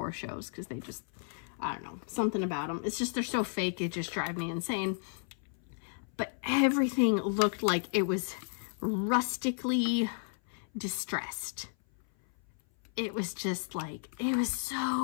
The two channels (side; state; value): right; silent; 56 dB below the other